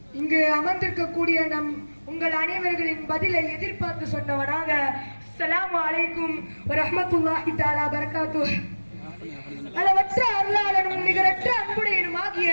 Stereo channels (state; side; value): inverted; both; correlation -1.00